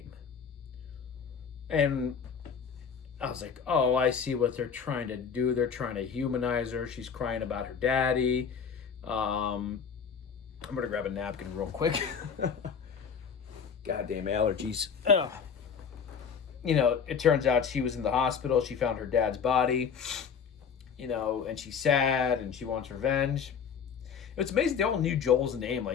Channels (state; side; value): quieter; right; 6.7 dB